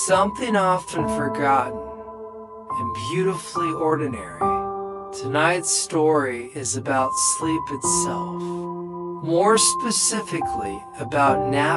often forgotten and beautifully ordinary. Tonight's story is about sleep itself, more specifically about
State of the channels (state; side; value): identical; both; correlation 1.00